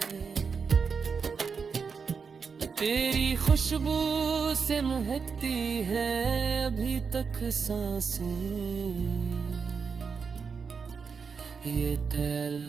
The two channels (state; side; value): quieter; left; 5.6 dB